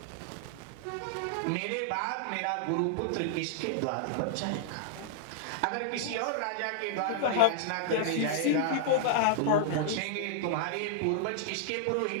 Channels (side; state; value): both; different; correlation -0.01